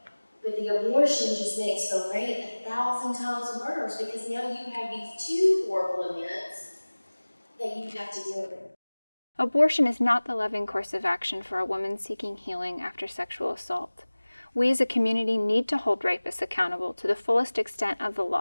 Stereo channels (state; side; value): inverted; both; correlation -1.00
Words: But the abortion just makes the rape 1,000 times worse, because now you have these two horrible events that you have to deal with. Abortion is not the loving course of action for a woman seeking healing after sexual assault. We as a community need to hold rapists accountable to the fullest extent of the